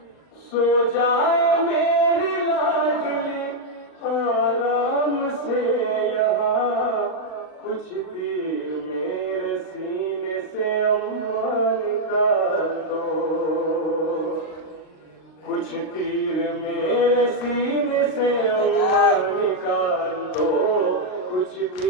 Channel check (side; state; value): right; late; 39 ms